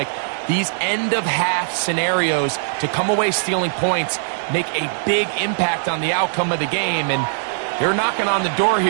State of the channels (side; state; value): left; silent; digital silence